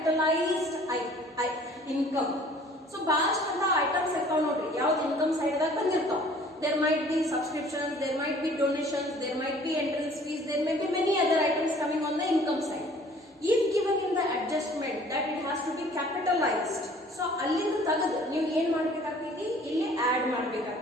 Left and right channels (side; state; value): both; normal; correlation 0.52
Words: income. So bast ಅಂತ items account ನೋಡ್ರಿ ಯಾವ್ದು income side ದಾಗ ಬಂದಿರ್ತಾವ. There might be subscriptions, there might be donations, there might be entrance fees, there may be many other items coming on the income side. If given in the adjustment that it has to be capitalized, so ಅಲ್ಲಿಂದ ತೆಗೆದು ನೀವು ಏನು ಮಾಡಬೇಕಾಗ್ತೈತಿ, ಇಲ್ಲಿ add